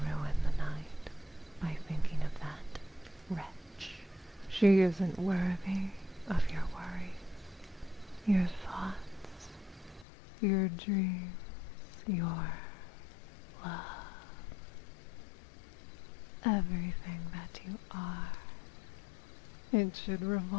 ruin the night by thinking of that wretch. She isn't worthy of your worries, your thoughts, your dreams, your love. Everything that you are. It should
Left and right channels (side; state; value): right; drops out; at 10.1 s